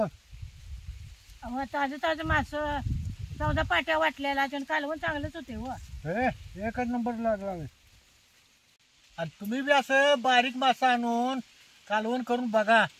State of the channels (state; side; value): identical; both; correlation 1.00